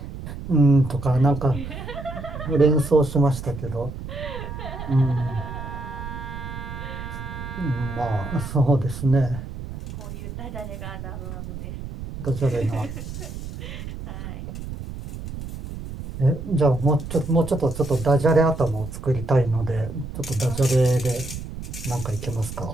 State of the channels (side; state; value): right; noise; rumble, 9 dB below the sound